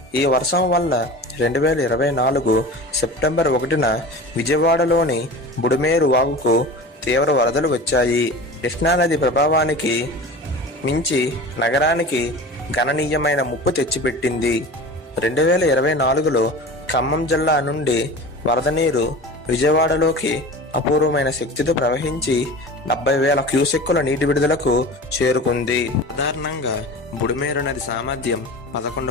ఈ వర్షం వల్ల 2024 సెప్టెంబర్ 1న విజయవాడలోని బుడమేరు వాగుకు తీవ్ర వరదలు వచ్చాయి. కృష్ణానది ప్రభావానికి మించి నగరానికి గణనీయమైన ముప్పు తెచ్చిపెట్టింది. 2024లో ఖమ్మం జిల్లా నుండి వరద నీరు విజయవాడలోకి అపూర్వమైన శక్తితో ప్రవహించి 70,000 క్యూసెక్కుల నీటి విడుదలకు చేరుకుంది. సాధారణంగా బుడమేరు నది సామర్థ్యం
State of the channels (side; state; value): both; normal; correlation 0.34